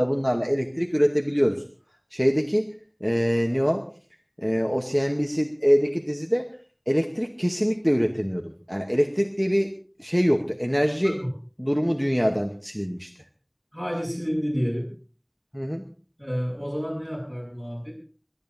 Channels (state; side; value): identical; both; correlation 1.00